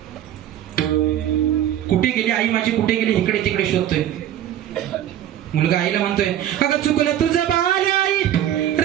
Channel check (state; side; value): quieter; left; 11.3 dB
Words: कुठे गेली आई माझी, कुठे गेली, इकडे तिकडे शोधतोय. मुलगा आईला म्हणतोय अगं चुकलं तुझं बाल आई,